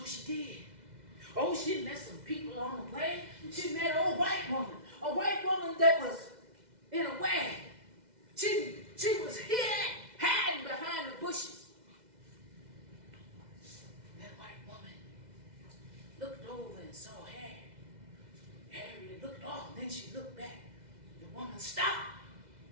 she did. Oh, she met some people on the way. She met an old white woman. A white woman that was in a wagon. She was here hiding behind the bushes. Looked over and saw Harriet. Harriet looked off, then she looked back. The woman stopped.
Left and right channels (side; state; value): left; late; 2.0 ms